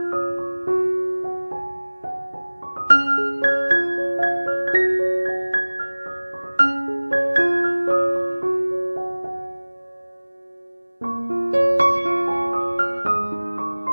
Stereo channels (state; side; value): inverted; both; correlation -1.00